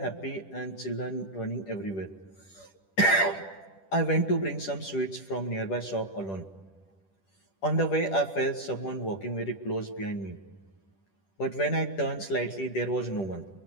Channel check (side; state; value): right; late; 10 ms